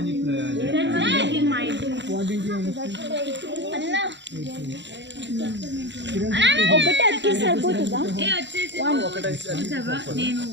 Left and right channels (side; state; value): left; late; 0.52 ms